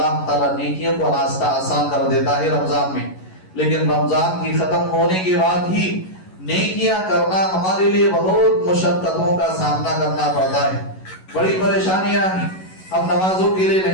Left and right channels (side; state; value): right; late; 11 ms